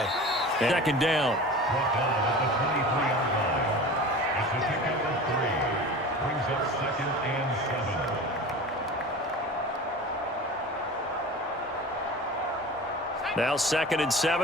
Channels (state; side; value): normal; both; correlation 0.35